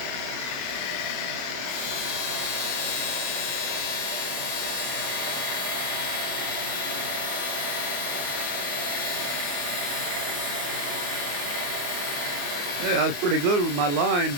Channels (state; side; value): late; left; 28 ms